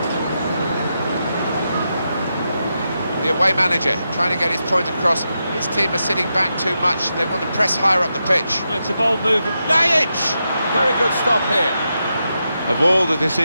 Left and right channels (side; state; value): both; inverted; correlation -0.86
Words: The away manager trying to get his point across. His team are sitting back too much. They want to press higher up the pitch. It's a bold move. Najic! Very good stop here. Of all the